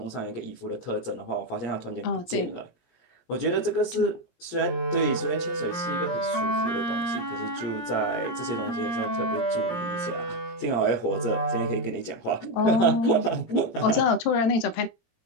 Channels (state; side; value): late; right; 17 ms